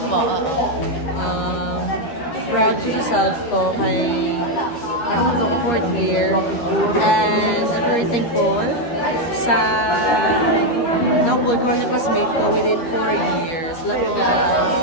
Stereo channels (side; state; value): right; late; 13 ms